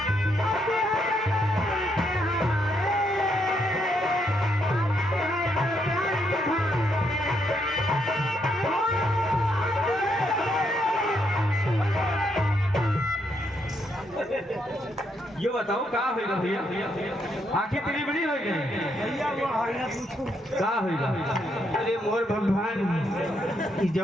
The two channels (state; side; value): normal; both; correlation 0.76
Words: ये बताओ का होगा भैया, आंखें तेरी बड़ी हो गई का होगा? अरे मोर भगवान